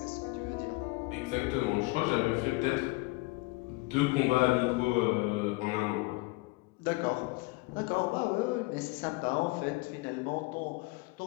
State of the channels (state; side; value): quieter; right; 24.4 dB